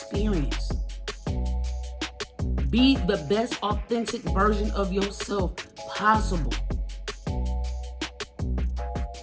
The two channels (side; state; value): both; identical; correlation 1.00